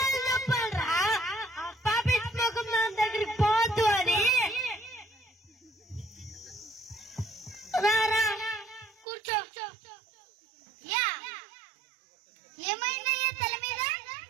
చెప్పాలరా ఆ పాపిట్ ముఖం నా దగ్గరికి పోద్దు అని రారా కూర్చో యా ఏమైందయ్యా తల మీద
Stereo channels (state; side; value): drops out; left; at 9.1 s